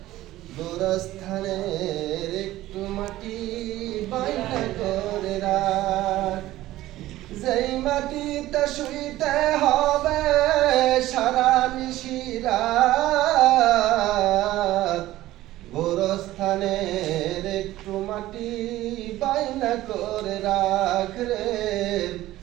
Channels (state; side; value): quieter; left; 15.7 dB